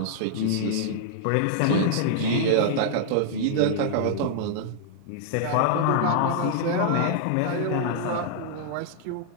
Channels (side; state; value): both; different; correlation -0.01